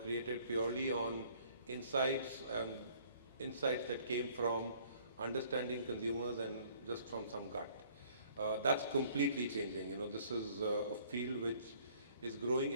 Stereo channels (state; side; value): inverted; both; correlation -0.58